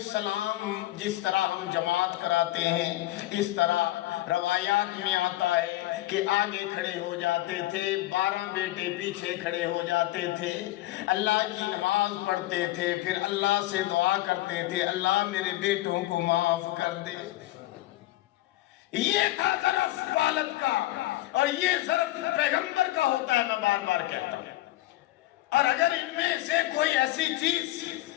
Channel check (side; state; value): right; quieter; 16.8 dB